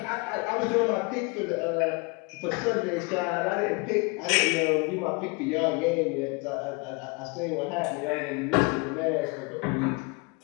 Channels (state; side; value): quieter; right; 29.7 dB